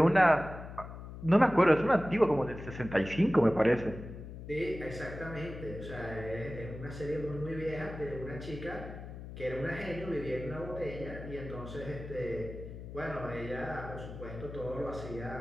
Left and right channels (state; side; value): noise; left; hum, 11 dB below the sound